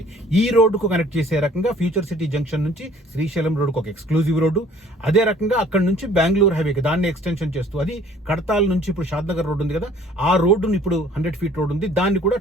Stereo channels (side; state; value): both; normal; correlation 0.54